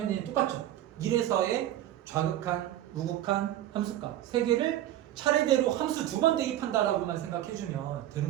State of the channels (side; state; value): left; quieter; 12.8 dB